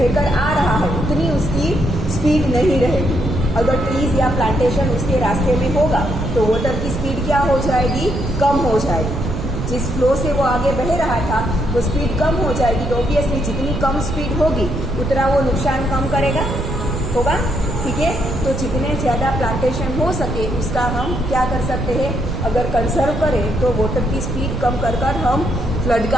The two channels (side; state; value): right; noise; rumble, 4 dB below the sound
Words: आ रहा है उतनी उसकी स्पीड नहीं रहेगी। अगर ट्रीज या प्लांटेशन उसके रास्ते में होगा तो वाटर की स्पीड क्या हो जाएगी, कम हो जाएगी। जिस फ्लो से वो आगे बह रहा था वो स्पीड कम हो जाएगी, तो ऑब्वियसली जितनी कम स्पीड होगी उतना वो नुकसान कम करेगा होगा। ठीक है, तो जितने ज़्यादा प्लांटेशन हो सके उसका हम क्या कर सकते हैं, अगर कंजर्व करें तो वाटर की स्पीड कम कर हम फ्लड